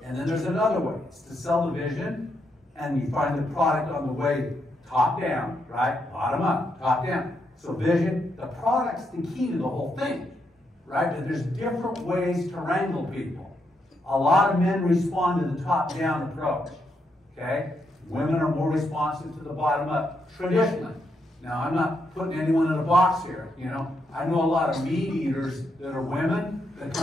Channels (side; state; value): both; normal; correlation 0.80